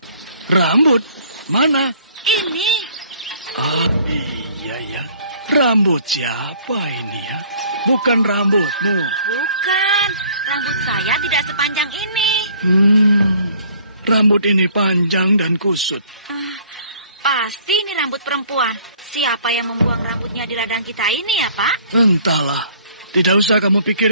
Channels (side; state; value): both; inverted; correlation -0.56